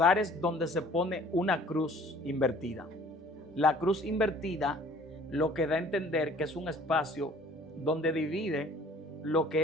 donde se pone una cruz invertida. La cruz invertida lo que da a entender que es un espacio donde divide lo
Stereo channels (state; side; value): normal; both; correlation 0.52